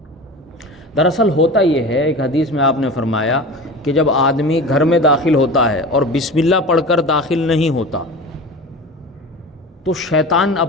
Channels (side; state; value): both; normal; correlation 0.33